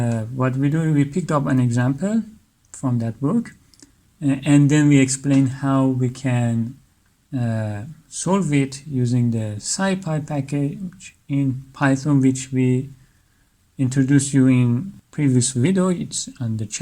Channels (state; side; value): identical; both; correlation 1.00